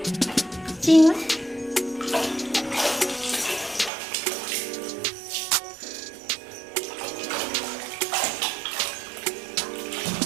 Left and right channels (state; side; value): drops out; left; at 3.9 s